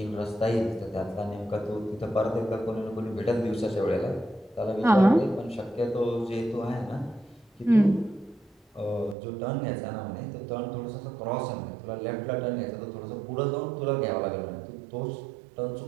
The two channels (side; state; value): left; drops out; at 9.2 s